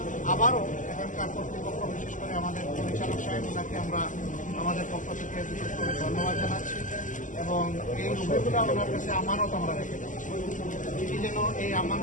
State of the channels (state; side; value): late; right; 0.37 ms